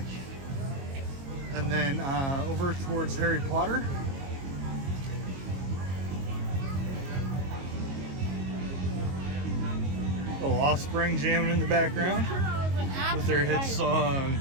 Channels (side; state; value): left; late; 22 ms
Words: and then over towards Harry Potter. Little Offspring jamming in the background with their hit song